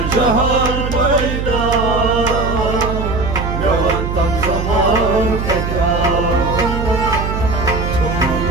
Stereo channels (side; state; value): right; noise; hum, 3 dB below the sound